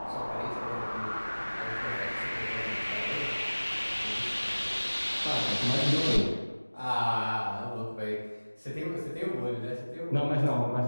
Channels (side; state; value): both; inverted; correlation -1.00